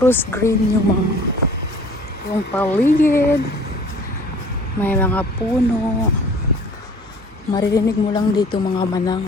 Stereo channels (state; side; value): normal; both; correlation 0.50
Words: green yung paligid. May mga puno. Maririnig mo lang dito mga manang